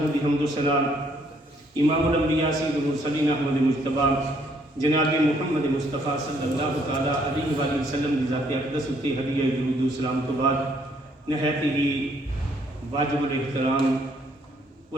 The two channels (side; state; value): both; normal; correlation 0.67